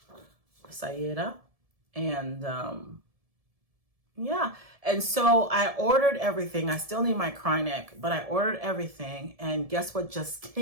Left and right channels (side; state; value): left; late; 1.7 ms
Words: And yeah, and so I ordered everything. I still need my cry neck, but I ordered everything. And guess what just